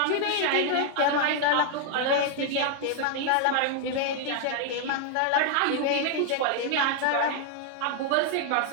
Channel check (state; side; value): different; both; correlation 0.00